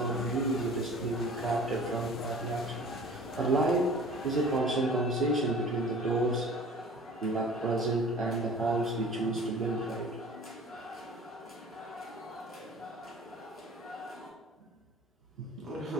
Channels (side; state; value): both; normal; correlation 0.45